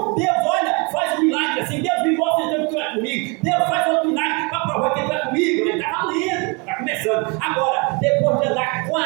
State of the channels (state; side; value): quieter; left; 30.9 dB